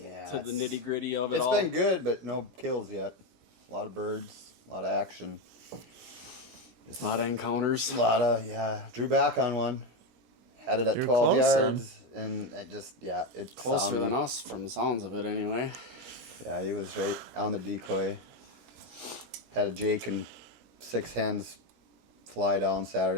of it all. It's been good, but no kills yet. A lot of birds, a lot of action. A lot of encounters. Drew back on one. Had it at 12 yards, and it's closer than us from the sounds of it anyway. Yeah, he was right on the decoy. Had a Jake and 6 hens fly down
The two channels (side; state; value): left; late; 17 ms